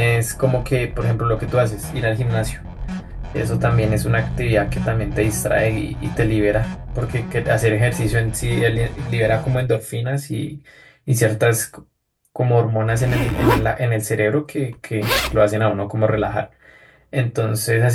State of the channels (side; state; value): both; identical; correlation 1.00